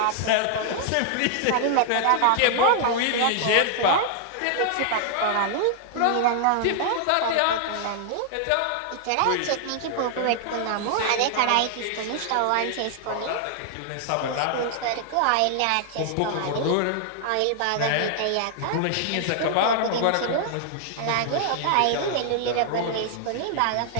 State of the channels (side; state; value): both; different; correlation -0.01